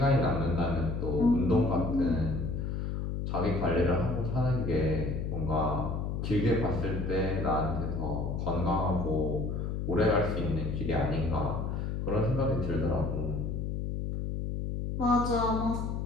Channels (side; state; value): left; noise; hum, 2 dB below the sound